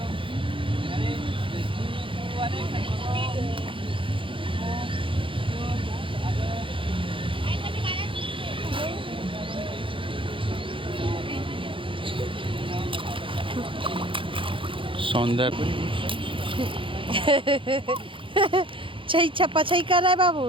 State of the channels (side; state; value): left; late; 0.25 ms